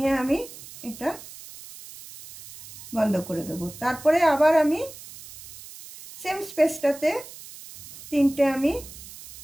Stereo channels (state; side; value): noise; right; hiss, 16 dB below the sound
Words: আমি এটা বন্ধ করে দেবো। তারপরে আবার আমি সেম স্পেসটাতে 3টে আমি